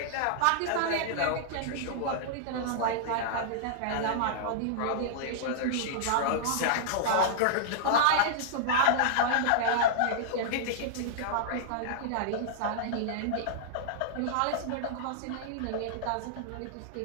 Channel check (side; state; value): both; different; correlation -0.01